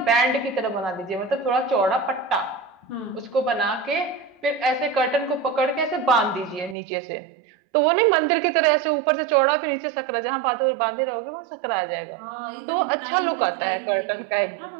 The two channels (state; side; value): drops out; left; at 6.8 s